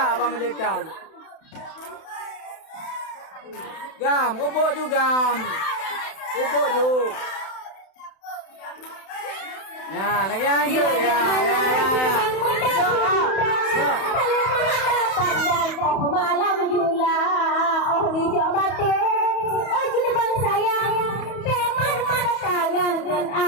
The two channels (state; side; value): late; right; 31 ms